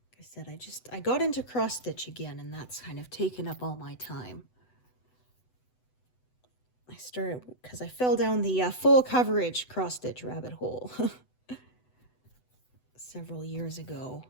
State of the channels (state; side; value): late; right; 8.0 ms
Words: Said I got into cross stitch again, and that's kind of taken up all my time. I started because I fell down the full coverage cross stitch rabbit hole several years ago.